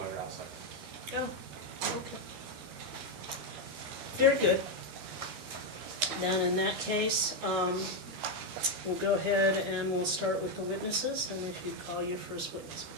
outside. Oh, okay. Very good. Then in that case, we'll go ahead and we'll start with the witnesses, and if you'd call your first witness,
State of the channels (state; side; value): late; left; 13 ms